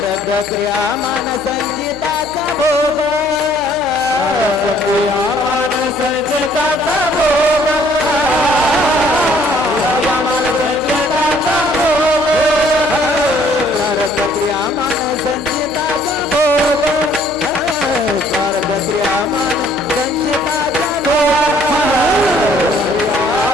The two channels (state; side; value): noise; right; hum, 19 dB below the sound